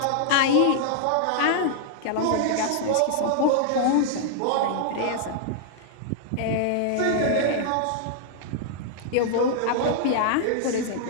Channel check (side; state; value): both; different; correlation -0.01